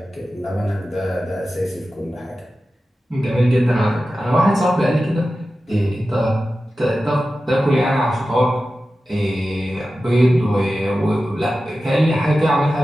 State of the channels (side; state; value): both; normal; correlation 0.94